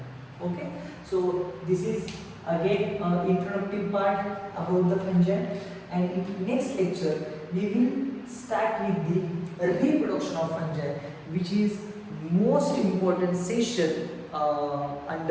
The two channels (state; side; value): identical; both; correlation 1.00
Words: Okay, so this is again introductive part about the fungi, and in next lecture we will start with the reproduction of fungi, which is most important session